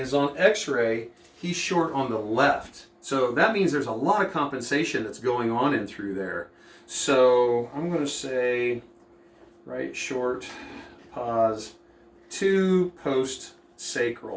on x-ray, he's short on the left. So that means there's a lot of compensation that's going on in through there. So I'm going to say right short, pause, to post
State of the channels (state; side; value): identical; both; correlation 1.00